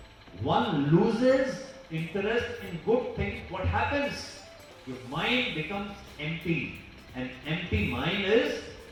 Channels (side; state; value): both; identical; correlation 1.00